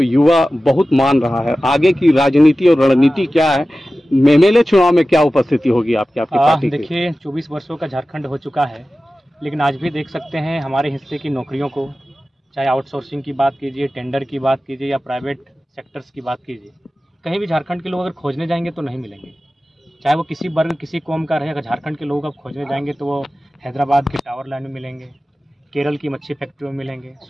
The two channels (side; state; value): both; normal; correlation 0.95